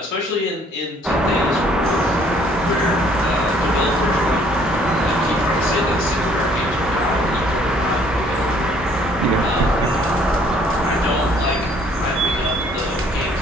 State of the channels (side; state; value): both; normal; correlation 0.61